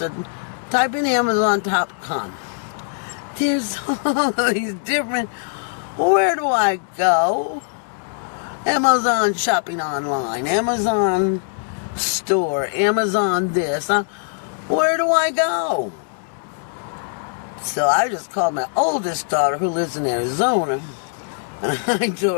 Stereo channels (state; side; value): silent; right; digital silence